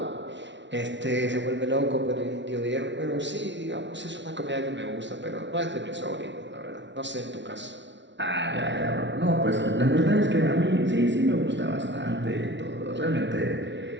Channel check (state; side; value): late; left; 0.52 ms